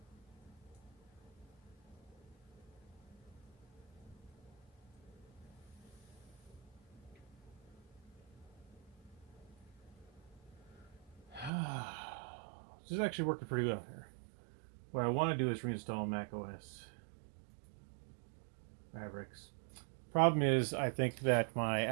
This is actually working pretty well here. What I want to do is reinstall Mac OS Mavericks. Problem is, I think that my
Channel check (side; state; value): left; drops out; at 11.5 s